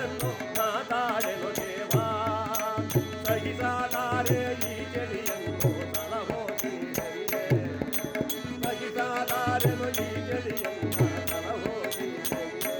ನಾ ತಾಳೆನು ದೇವಾ, ಸಹಿಸಲಾರೆ ಈ ಚಳಿಯನ್ನು ತಲಹೋಗಿ ಹರಿಯೇ, ಸಹಿಸಲಾರೆನು ಈ ಚಳಿಯನ್ನು ತಲಹೋಗಿ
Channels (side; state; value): both; identical; correlation 1.00